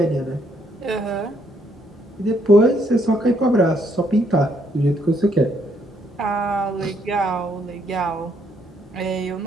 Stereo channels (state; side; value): normal; both; correlation 0.71